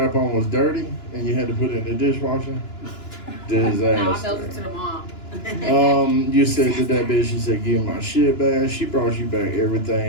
was dirty and you had to put it in the dishwasher? No, I felt it Disaster. to the mom. You said to that bitch, you said, give my shit back. She brought you back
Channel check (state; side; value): late; right; 2.9 ms